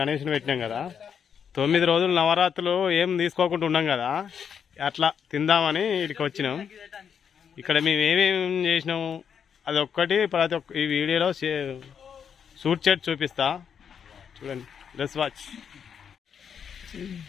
పెట్టినాం కదా, 9 రోజులు నవరాత్రులు ఏం తీసుకోకుండా ఉన్నాం కదా, అట్లా తిందామని ఇక్కడికి వచ్చినాం. ఇక్కడ మేము ఏమేమి చేసినాము అది ఒక్కటి ప్రతి ఒక్క ఈ వీడియోలో షూట్ చేసి చూపిస్తా, చూడండి. Let's watch.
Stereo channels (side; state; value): right; quieter; 7.5 dB